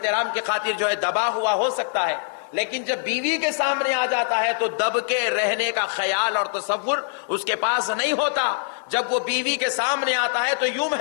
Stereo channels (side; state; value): right; silent; digital silence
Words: کی خاطر جو ہے دبا ہوا ہو سکتا ہے، لیکن جب بیوی کے سامنے آ جاتا ہے تو دب کے رہنے کا خیال اور تصور اس کے پاس نہیں ہوتا۔ جب وہ بیوی کے سامنے آتا ہے تو یوں